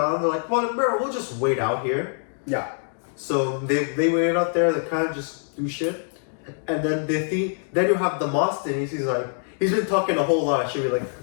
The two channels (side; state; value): right; silent; 62 dB below the other